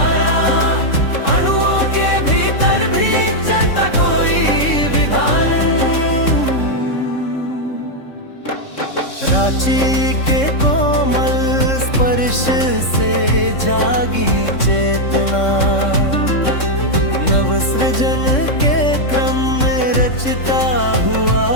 अणुओं के भीतर भी चलता कोई विधान। रांची के कोमल स्पर्श से जागी चेतना, नव सृजन के क्रम में रचता हुआ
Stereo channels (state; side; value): late; right; 3.6 ms